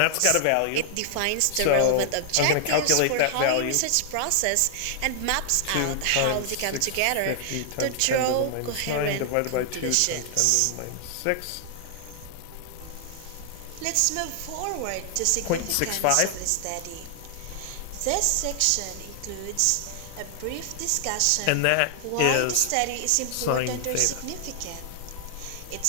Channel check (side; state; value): both; different; correlation 0.00